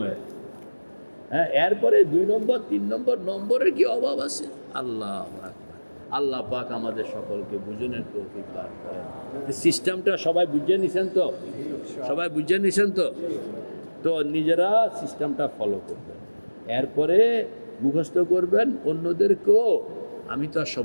হ্যাঁ, এরপরে 2 নম্বর 3 নম্বর নম্বরের কি অভাব আছে? আল্লাহ আকবার। আল্লাহ পাক আমাদের সকলকে বুঝনের তৌফিক দান করেন। সিস্টেমটা সবাই বুঝে নিছেন তো? সবাই বুঝে নিছেন তো? তো নিজেরা সিস্টেমটা ফলো করবেন, এরপরে মুখস্থ করবেন। অন্যদেরকেও, আমি তো আর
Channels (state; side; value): inverted; both; correlation -1.00